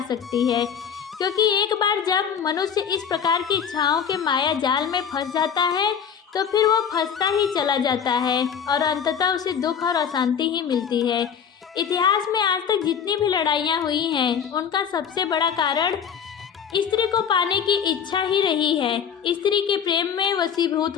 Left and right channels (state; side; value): quieter; right; 7.5 dB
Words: सकती है। क्योंकि एक बार जब मनुष्य इस प्रकार की इच्छाओं के माया जाल में फंस जाता है तो फिर वो फंसता ही चला जाता है और अंततः उसे दुख और अशांति ही मिलती है। इतिहास में आज तक जितनी भी लड़ाइयाँ हुई हैं उनका सबसे बड़ा कारण स्त्री को पाने की इच्छा ही रही है। स्त्री के प्रेम में